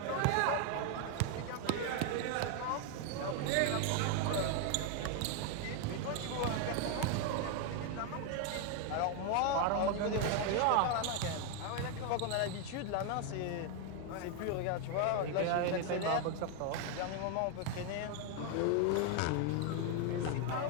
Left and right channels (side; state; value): both; different; correlation 0.01